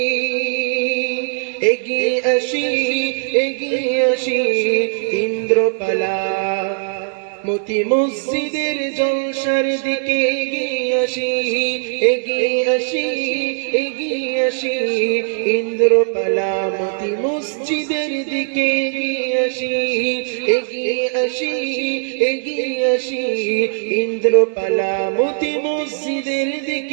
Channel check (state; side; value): silent; left; digital silence